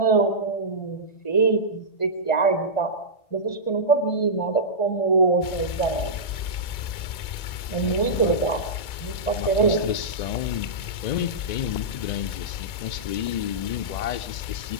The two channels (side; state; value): right; late; 2.0 ms